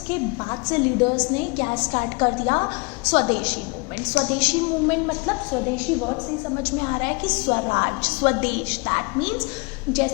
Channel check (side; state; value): right; quieter; 29.5 dB